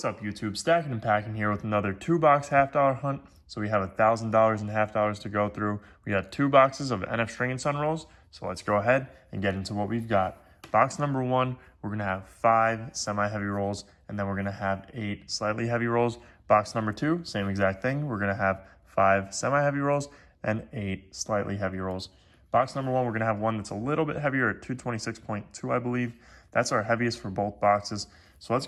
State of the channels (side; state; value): both; identical; correlation 1.00